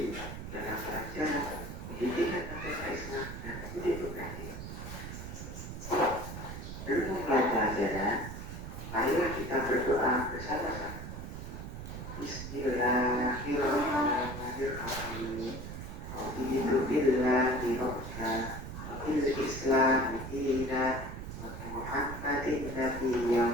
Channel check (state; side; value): noise; right; rumble, 8 dB below the sound